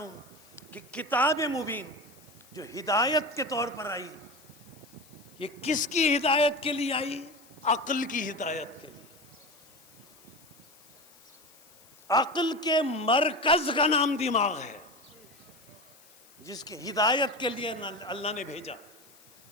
کہ کتاب مبین جو ہدایت کے طور پر آئی، یہ کس کی ہدایت کے لیے آئی؟ عقل کی ہدایت کے لیے. عقل کے مرکز کا نام دماغ ہے، جس کی ہدایت کے لیے اللہ نے بھیجا.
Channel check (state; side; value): noise; left; hiss, 25 dB below the sound